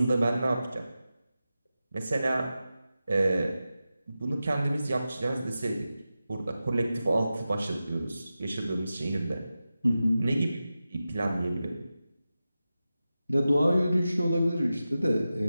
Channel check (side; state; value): both; inverted; correlation -0.93